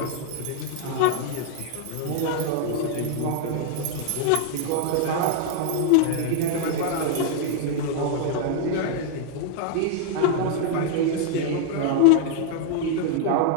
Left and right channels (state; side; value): different; both; correlation 0.00